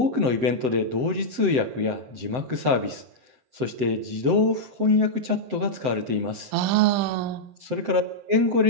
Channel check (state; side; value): late; left; 7.8 ms